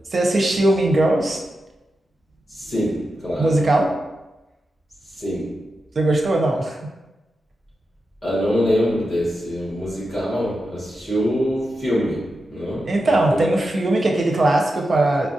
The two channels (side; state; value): both; normal; correlation 0.89